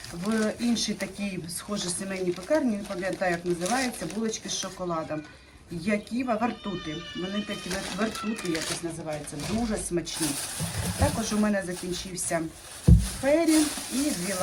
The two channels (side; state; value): both; identical; correlation 1.00